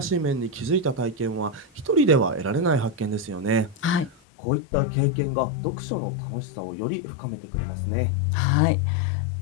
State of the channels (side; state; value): right; drops out; at 4.2 s